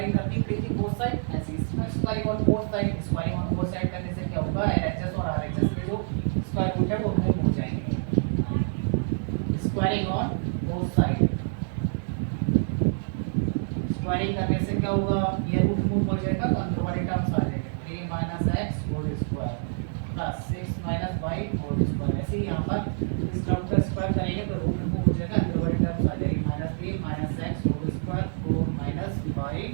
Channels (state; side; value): silent; left; digital silence